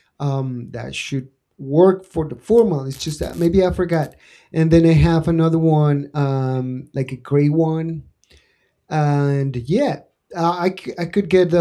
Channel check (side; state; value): both; identical; correlation 1.00